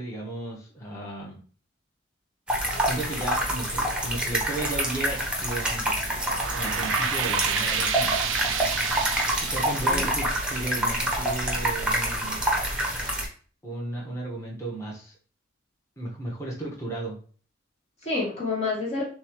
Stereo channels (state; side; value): normal; both; correlation 0.20